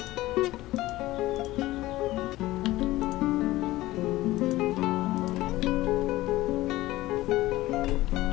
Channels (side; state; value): right; quieter; 17.4 dB